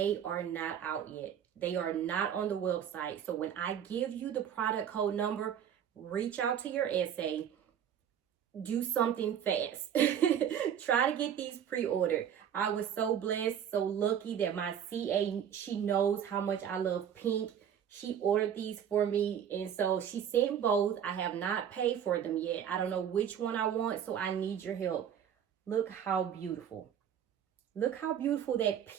are not out yet. They are not on the website. So when I give you the product code number, reach out to your essay. Do something fast. Try to get these pre-ordered. I was so blessed, so lucky that my CA, she knows how much I love pink. She ordered these for me, and so she sent both. I have not paid for them yet. I don't know which one I want, so I need your help. Look how beautiful. Look how beautiful that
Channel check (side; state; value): left; quieter; 9.0 dB